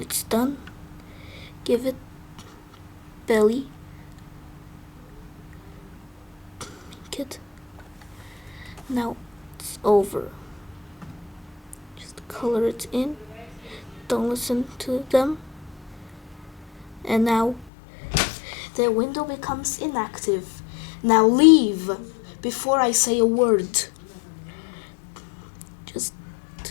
done. Give it belly. Good. Now it's over. Just color it in. Don't listen to them. And now the window becomes inactive. Now leave before I say a word. Just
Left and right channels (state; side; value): drops out; right; at 17.7 s